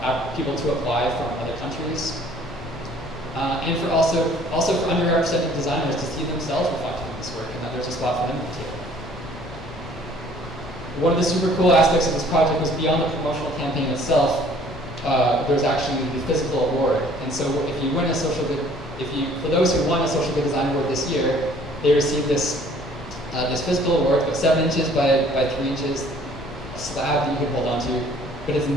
people to apply from other countries, and for also for underrepresented designers to see themselves reflected in this work, and that there's a spot for them at the table. One of the super cool aspects of this project was beyond the promotional campaign itself. There's actually the physical award, and so if you win a social good, for those who won a social good design award this year, they received this physical award, about 7 inches by 3 inches, a slab that you can hold onto, but it's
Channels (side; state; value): both; normal; correlation 0.56